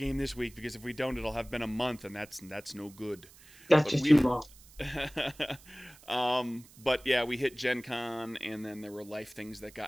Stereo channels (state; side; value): noise; right; hiss, 23 dB below the sound